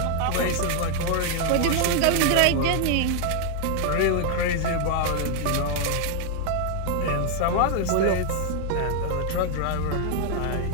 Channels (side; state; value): both; different; correlation 0.00